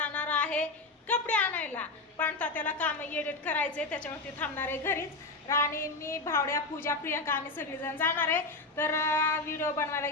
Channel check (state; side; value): quieter; right; 3.4 dB